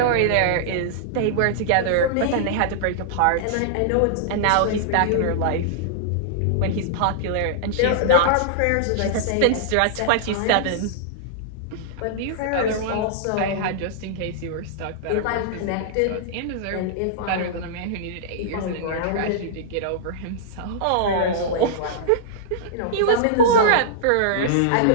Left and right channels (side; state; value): both; different; correlation -0.02